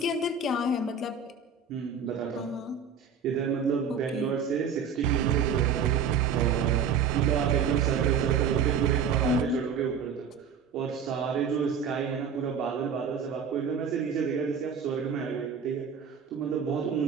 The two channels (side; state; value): left; quieter; 6.3 dB